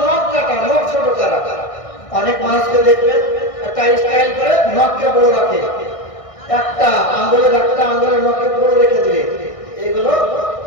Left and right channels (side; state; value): right; late; 1.6 ms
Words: নখ কাটা, নখ ছোট করা। অনেক মানুষকে দেখবেন একটা স্টাইল করে নখকে বড় রাখে, একটা আঙ্গুলের নখকে বড় রেখে দিবে। এগুলো